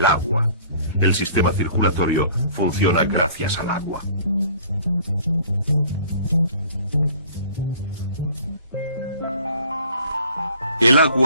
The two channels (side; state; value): both; inverted; correlation -0.50